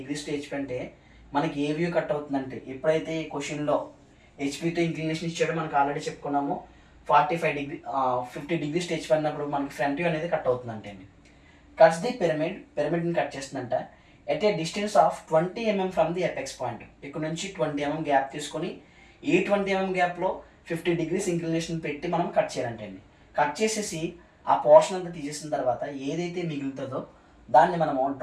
to HP అంటే మనకి ఏ వ్యూ కట్ అవుతుందంటే, ఎప్పుడైతే ఈ క్వశ్చన్లో హెచ్పితో ఇంక్లినేషన్ ఇచ్చాడో మనకు ఆల్రెడీ చెప్పుకున్నాము. 50 degrees to HP అన్నప్పుడు మనకి ఫ్రంట్ వ్యూ అనేది కట్ అవుతుందంటే అండి. కట్స్ ది పిరమిడ్ని కట్ చేస్తుందంట at a distance of 20 mm from the apex point. ఇక్కడ నుంచి 20 mm గ్యాప్ తీసుకొని ఈ 20 mm గ్యాప్లో 50 degrees ఇంక్లినేషన్ పెట్టి మనం కట్ చేయాలంటే అండి. కట్ చేసేసి ఆ పోర్షన్ అంతా తీసేసిన తర్వాత ఏదైతే మిగులుతుందో దాన్ని మనము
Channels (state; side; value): identical; both; correlation 1.00